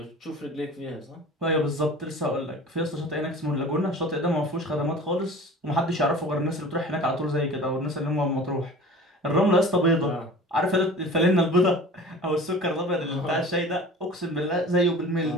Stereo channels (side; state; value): both; normal; correlation 0.41